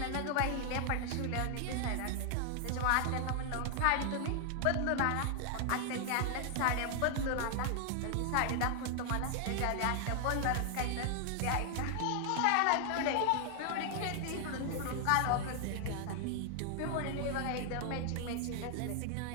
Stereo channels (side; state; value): both; different; correlation 0.00